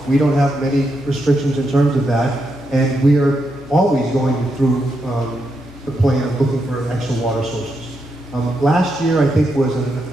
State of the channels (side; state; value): both; normal; correlation 0.83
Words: We don't have many restrictions in terms of that, and we are always going through the plan of looking for extra water sources. Last year, I think, was